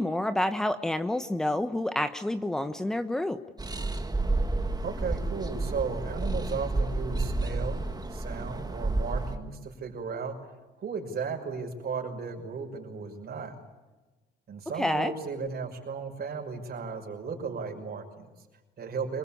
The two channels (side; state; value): both; normal; correlation 0.75